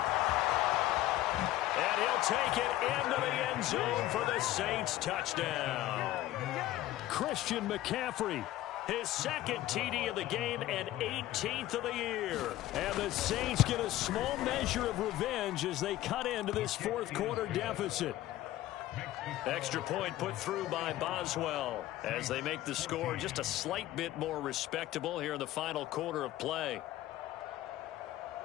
And he'll take it into the end zone for the Saints touchdown. Christian McCaffrey, his second TD of the game and 18th of the year. And the Saints get a small measure of revenge as they cut into this fourth quarter deficit. Extra point put through by Boswell as they make the score just a slight bit more respectable here in the final quarter of play.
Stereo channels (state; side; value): quieter; right; 15.0 dB